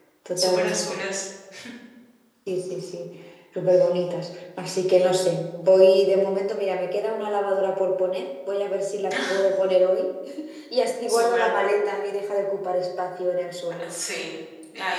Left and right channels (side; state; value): both; identical; correlation 1.00